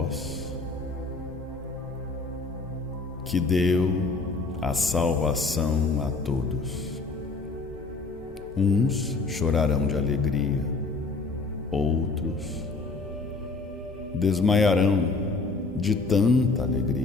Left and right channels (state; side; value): quieter; right; 3.9 dB